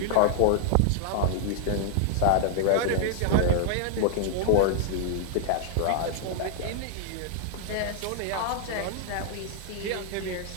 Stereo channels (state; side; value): different; both; correlation 0.00